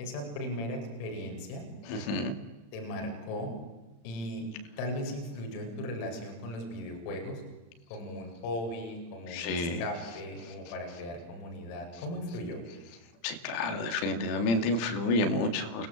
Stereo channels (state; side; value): late; right; 35 ms